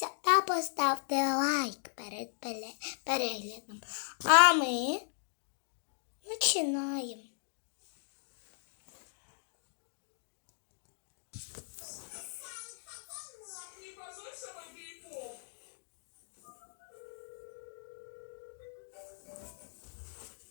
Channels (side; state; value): right; silent; digital silence